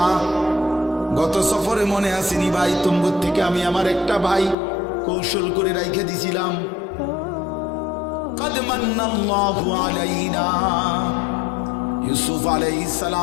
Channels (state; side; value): drops out; right; at 4.5 s